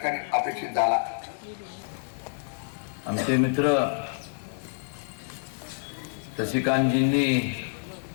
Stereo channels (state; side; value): silent; right; digital silence